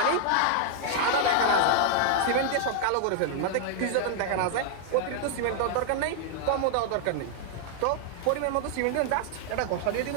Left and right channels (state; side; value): different; both; correlation -0.01